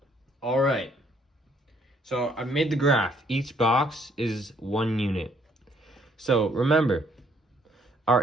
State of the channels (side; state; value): both; normal; correlation 0.66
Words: All right. So I made the graph. Each box is 1 unit. So remember, our